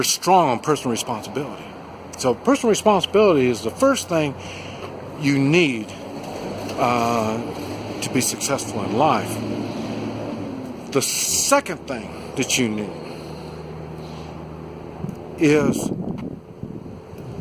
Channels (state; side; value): identical; both; correlation 1.00